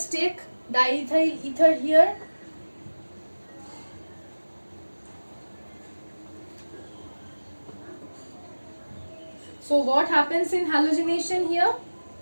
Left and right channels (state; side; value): inverted; both; correlation -1.00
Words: take diethyl ether here. So what happens in halogenation here?